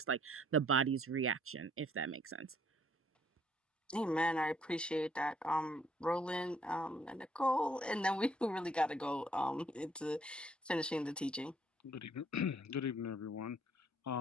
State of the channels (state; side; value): normal; both; correlation 0.65